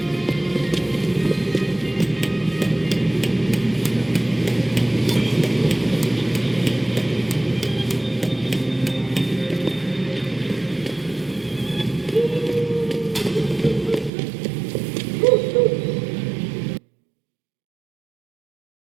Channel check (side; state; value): left; drops out; at 14.1 s